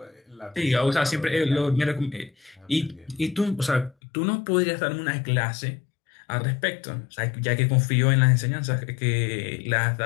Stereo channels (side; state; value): right; drops out; at 4.0 s